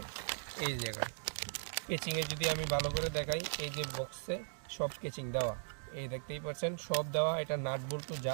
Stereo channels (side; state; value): left; silent; digital silence